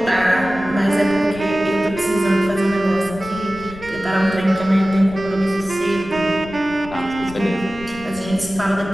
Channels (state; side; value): noise; left; rumble, 16 dB below the sound